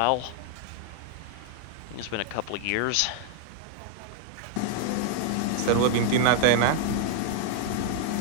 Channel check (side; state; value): both; different; correlation 0.00